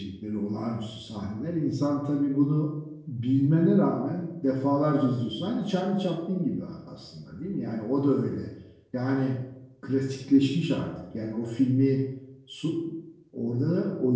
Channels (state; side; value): identical; both; correlation 1.00